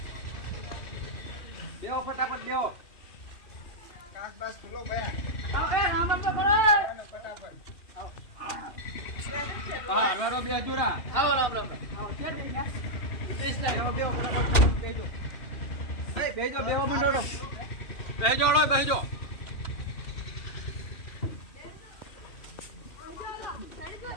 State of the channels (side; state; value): right; late; 2.7 ms